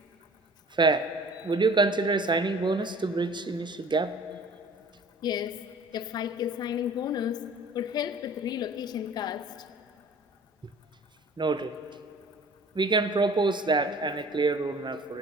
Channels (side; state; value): both; normal; correlation 0.48